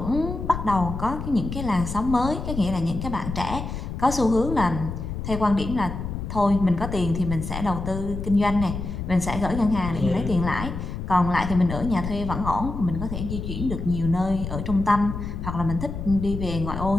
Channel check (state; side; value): noise; left; rumble, 6 dB below the sound